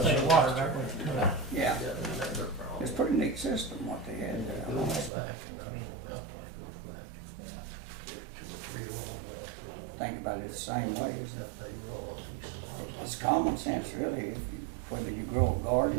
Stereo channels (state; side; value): drops out; left; at 5.1 s